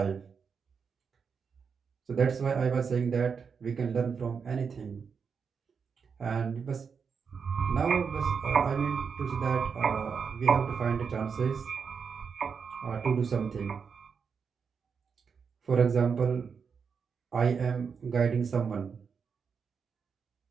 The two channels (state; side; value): quieter; left; 6.1 dB